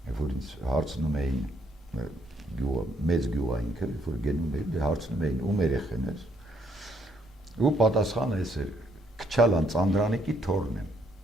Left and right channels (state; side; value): normal; both; correlation 0.71